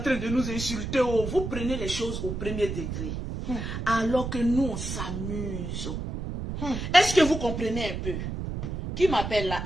train de nous insulter. Vous prenez les choses au premier degré. Alors que nous, on s'amuse. Est-ce que vous comprenez un peu? Qui m'appelle là?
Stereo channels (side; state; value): right; noise; rumble, 5 dB below the sound